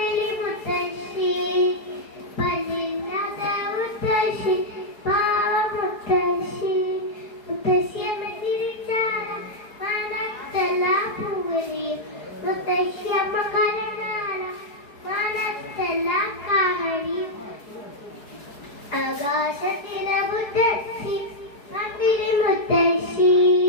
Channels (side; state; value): right; late; 4.7 ms